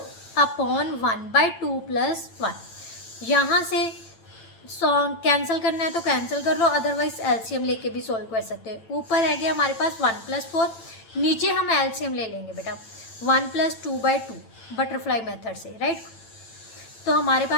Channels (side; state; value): right; late; 9.0 ms